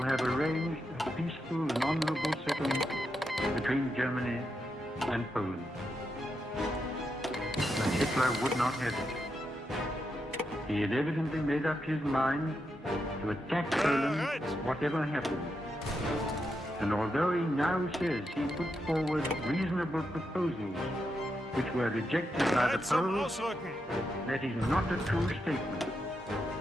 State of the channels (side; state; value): both; normal; correlation 0.84